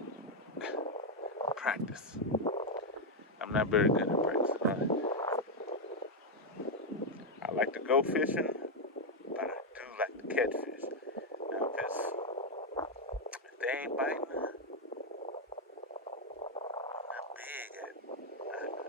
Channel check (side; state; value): both; normal; correlation 0.03